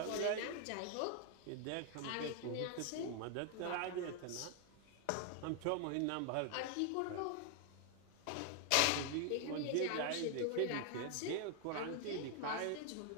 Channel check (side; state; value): both; different; correlation 0.00